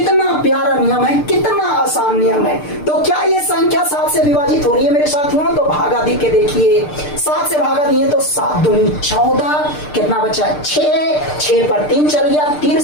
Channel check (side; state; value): right; late; 6.7 ms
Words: प्यारा नियम है, कितना आसान नियम है। तो क्या ये संख्या 7 से विभाजित हो रही है मेरे साथियों? तो भागा दे के देखिए, 7 से भागा दिए तो 7 दूनी 14, कितना बचा? 6, 6 पर 3 चल गया